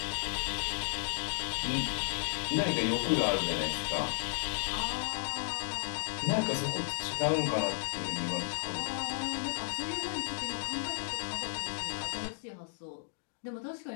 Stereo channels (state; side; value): silent; right; digital silence